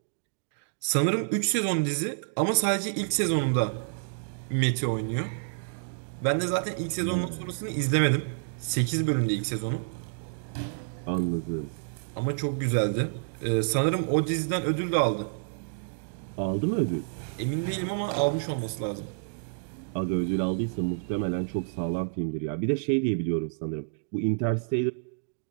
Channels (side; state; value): left; silent; digital silence